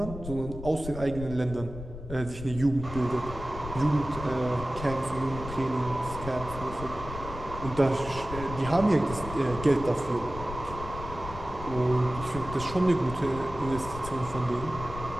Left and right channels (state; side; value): noise; left; rumble, 10 dB below the sound